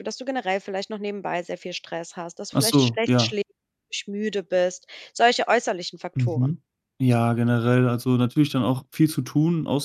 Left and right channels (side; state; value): both; identical; correlation 1.00